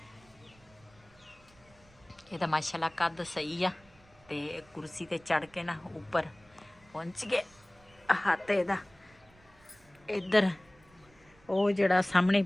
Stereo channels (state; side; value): noise; right; rumble, 28 dB below the sound